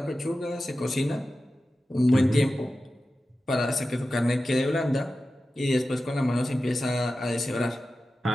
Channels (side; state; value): both; normal; correlation 0.93